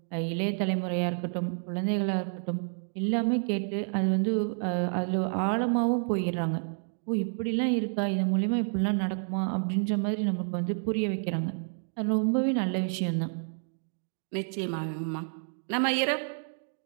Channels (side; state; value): left; silent; 58 dB below the other